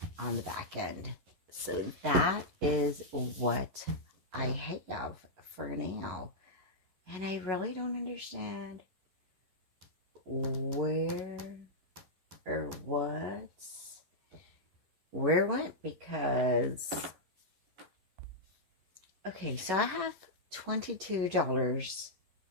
on the back end. So that is what I have for now. And I really don't understand where or where it went, because okay, so I have $22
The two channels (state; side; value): late; left; 11 ms